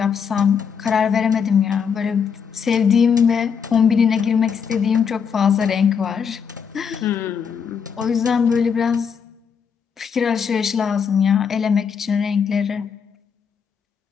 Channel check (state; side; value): quieter; right; 6.7 dB